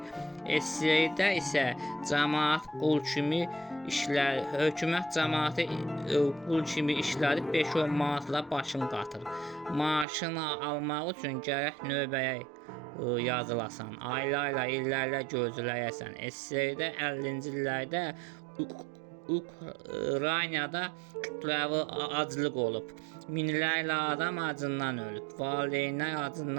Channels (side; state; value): left; drops out; at 10.1 s